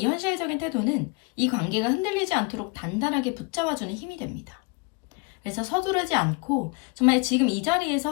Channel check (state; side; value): quieter; right; 30.5 dB